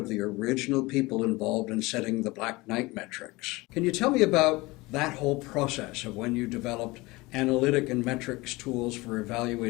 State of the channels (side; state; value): right; quieter; 22.3 dB